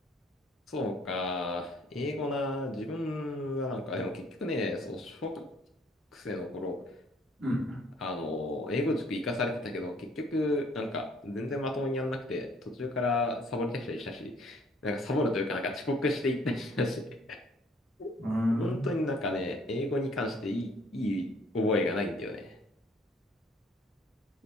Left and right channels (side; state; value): both; normal; correlation 0.59